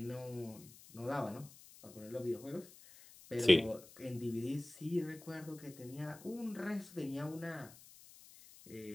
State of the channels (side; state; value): left; noise; hiss, 20 dB below the sound